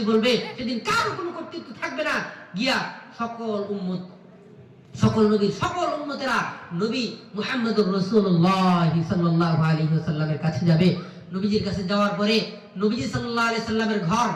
বলবে। সেদিন কারো কোনো কর্তৃত্ব থাকবে না। গিয়া সকল নবীর সকল উম্মতেরা নবী মুহাম্মদুর রাসূলুল্লাহ সাল্লাল্লাহু আলাইহি ওয়াসাল্লামের কাছে যাবে। নবীজির কাছে যাওয়ার পরে নবীজি সাল্লাল্লাহু আলাইহি সাল্লামের ঘর,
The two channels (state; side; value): identical; both; correlation 1.00